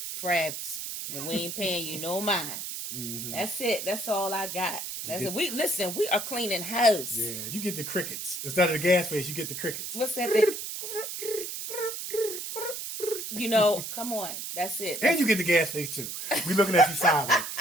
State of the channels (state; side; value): noise; right; hiss, 6 dB below the sound